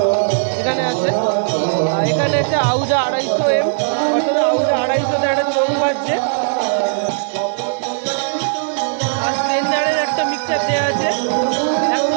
এখানে আছে। আর এখানে একটা আউজা 250M, অর্থাৎ আউজা 250তে একটা চোখ বাজছে। আর স্ট্রেঞ্জারের একটা মিক্সচার দেওয়া আছে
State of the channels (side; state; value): left; silent; digital silence